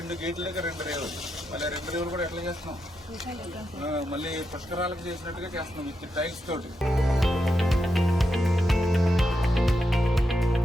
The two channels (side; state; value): both; normal; correlation 0.85